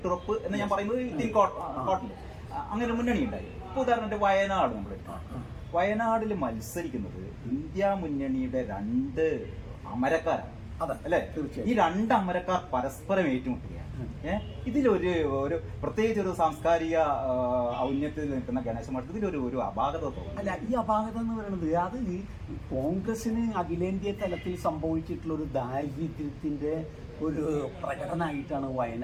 എന്ന് ഞാൻ പറയുന്നത് കോട്ടിൽ അങ്ങനെ മുന്നണി ഉണ്ടായി. ഇപ്പോൾ ഉദാഹരണത്തിന് വയനാട് നമ്മൾ വയനാടിൽ മത്സരിക്കുന്നത് ഇന്ത്യ മുന്നണിയുടെ 2 അമരക്കാരാണ് അല്ലേ. ഈ 2 അമരക്കാർ പരസ്പരം ഏറ്റുമുട്ടുകയാണ്. ഇതിലൊരു പ്രത്യേകിച്ച് ഒരു സാംസ്കാരിക ഔന്നത്യത്തിൽ നിൽക്കുന്ന ഗണേശ മഠത്തിൽ ഇതിലൊരു അപാകത തോന്നുന്നു. അല്ല, ഈ അപാകത എന്ന് പറയുന്നത് അത് കോൺഗ്രസിന് അഖിലേന്ത്യാ തലത്തിൽ സംഭവിച്ചിട്ടുള്ള ഒരു ദാരിദ്ര്യത്തിന്റെ ഒരു പ്രകടനമായിട്ടാണ്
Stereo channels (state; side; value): identical; both; correlation 1.00